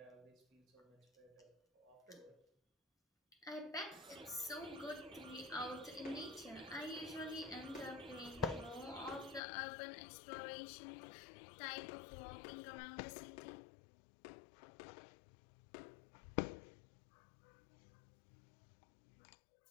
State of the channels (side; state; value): right; drops out; at 9.4 s